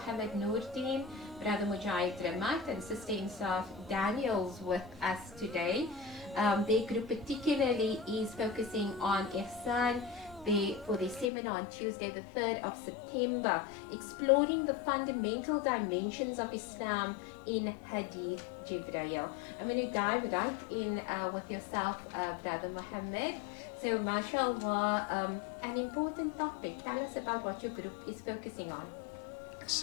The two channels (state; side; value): drops out; right; at 11.3 s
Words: Noordin, Brother Mujahid Ramat, and Sister Insaf Daniels with us today. Their group particularly is focusing on Ihsan for their seminar on Tuesday the 3rd of September, exploring the fundamental dimensions of Islam in Hadith Jibreel. I'm going to dive right in with yourself, Brother Muhammad. So, mashallah, an important topic. Tell us about what your group is focusing on.